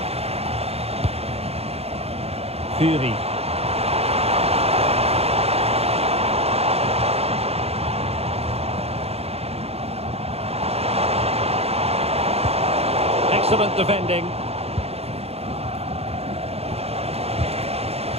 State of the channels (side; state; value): left; late; 0.29 ms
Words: Fury. Excellent defending.